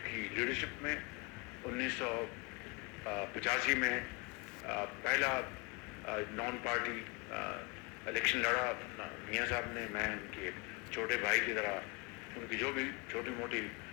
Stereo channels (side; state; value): right; quieter; 29.1 dB